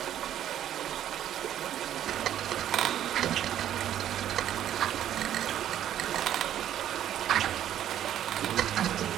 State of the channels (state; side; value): quieter; left; 11.1 dB